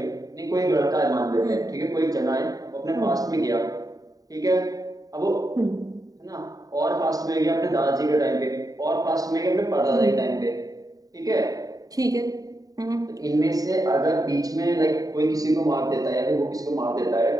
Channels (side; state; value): left; late; 0.18 ms